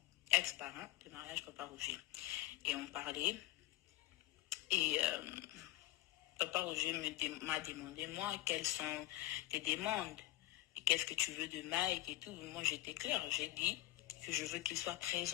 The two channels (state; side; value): quieter; right; 17.0 dB